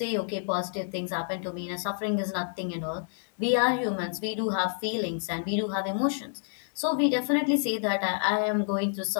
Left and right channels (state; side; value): silent; right; digital silence